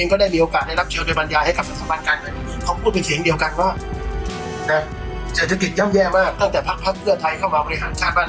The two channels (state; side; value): identical; both; correlation 1.00